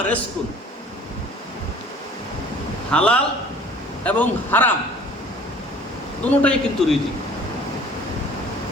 রিজকুন। হালাল এবং হারাম দুটোটাই কিন্তু রিজিক।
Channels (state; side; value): normal; both; correlation 0.50